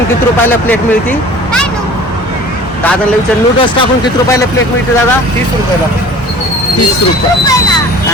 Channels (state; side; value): normal; both; correlation 0.45